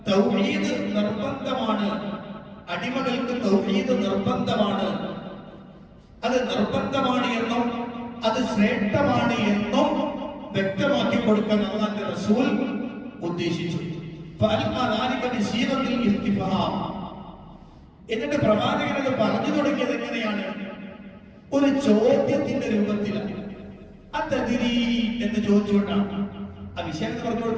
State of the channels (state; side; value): identical; both; correlation 1.00